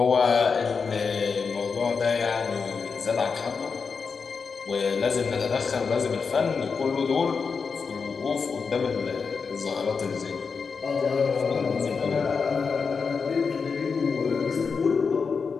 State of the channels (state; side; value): quieter; right; 5.3 dB